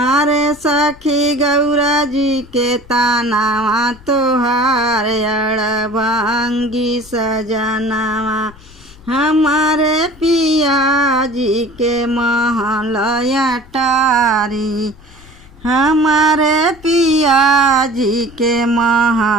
सखी गौरा जी के तानावा तोहार अड़ भांगी सजनावा। हमारे पिया जी के महलया टारी। हमारे पिया जी के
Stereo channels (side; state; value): left; noise; rumble, 22 dB below the sound